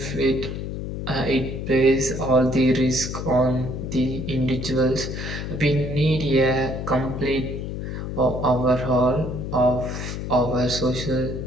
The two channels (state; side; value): noise; left; hum, 5 dB below the sound